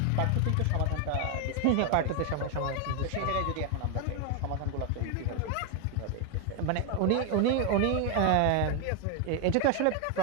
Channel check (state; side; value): different; both; correlation 0.01